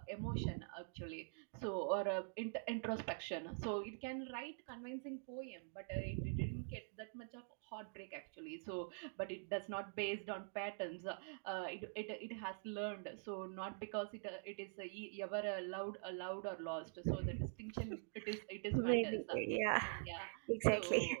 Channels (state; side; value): silent; left; digital silence